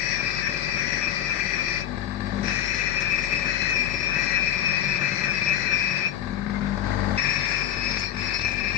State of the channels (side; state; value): right; quieter; 10.8 dB